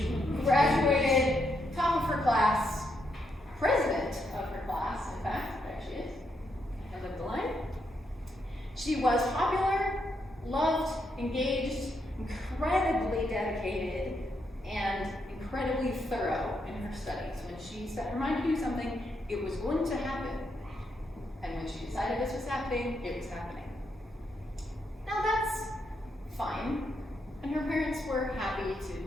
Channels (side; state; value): both; normal; correlation 0.79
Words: graduated top of her class, president of her class, in fact, there she is, end of the line. She was popular, loved, engaged, incredibly dedicated, and incredibly thorough in her studies. When she set her mind to do something, it was going to happen. And when she decided this was happening, it was happening. Now that's fine. And her parents were happy